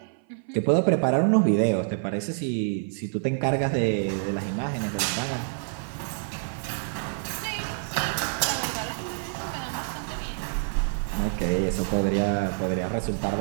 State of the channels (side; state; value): left; silent; 58 dB below the other